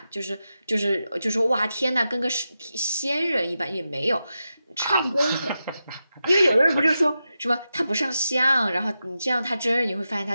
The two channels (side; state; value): both; inverted; correlation -0.90